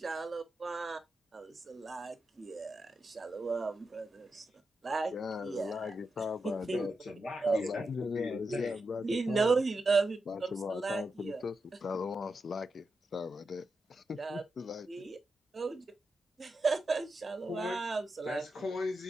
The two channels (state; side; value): normal; both; correlation 0.87